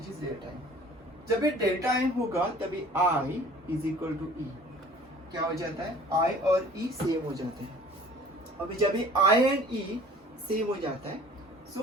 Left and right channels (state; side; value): normal; both; correlation 0.49